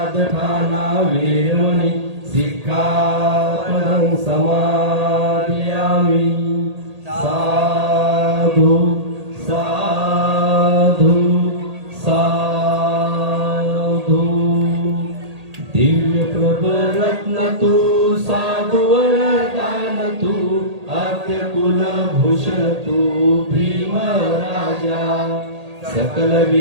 वेरमणि सिक्खापदं समादयामि। साधु साधु साधु। दिव्य प्रभरत्न तू साधु वरदान तू आद्य कुलभूषण तू भीम राजा। सकल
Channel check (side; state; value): left; late; 1.8 ms